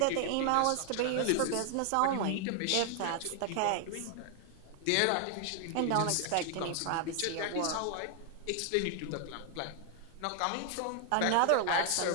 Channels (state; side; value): different; both; correlation 0.00